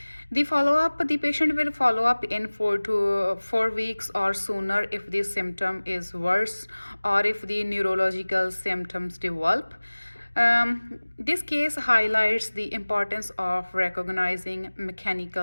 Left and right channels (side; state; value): both; inverted; correlation -1.00